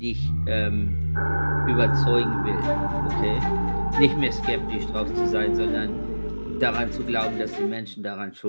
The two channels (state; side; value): inverted; both; correlation -1.00